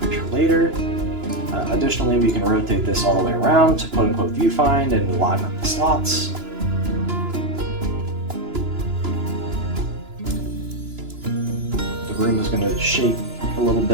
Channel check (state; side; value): late; left; 2.9 ms